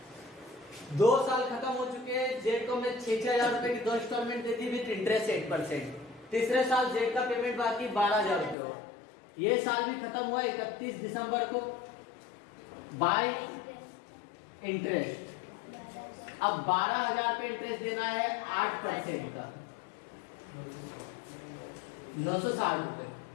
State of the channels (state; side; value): drops out; right; at 8.6 s